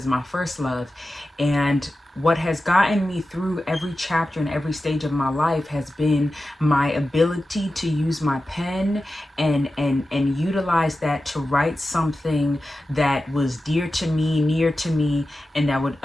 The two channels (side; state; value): both; normal; correlation 0.93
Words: my first love. And what has gotten me through every chapter and every stage of my life has been my ability to use my pen and utilize that to write something that was dear to me, near to me, and that would